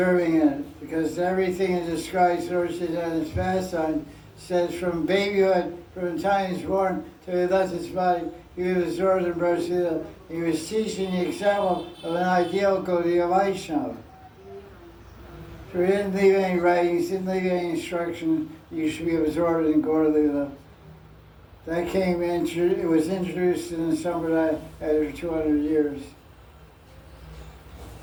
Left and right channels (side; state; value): both; identical; correlation 1.00